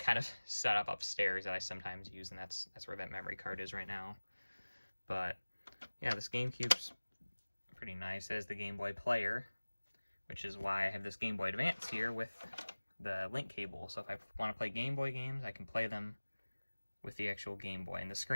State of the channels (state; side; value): inverted; both; correlation -1.00